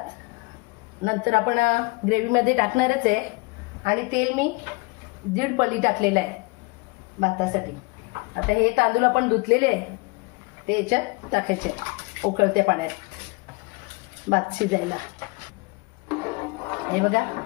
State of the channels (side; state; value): right; quieter; 26.6 dB